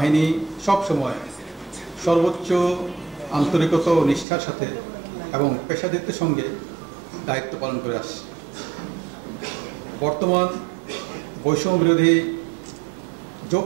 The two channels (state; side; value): drops out; left; at 4.2 s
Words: সবসময় সর্বোচ্চ আন্তরিকতা ও নিষ্ঠার সাথে এবং পেশাদারিত্বের সঙ্গে দায়িত্ব পালন করে আসছে। বর্তমান বৈষম্য বিরোধী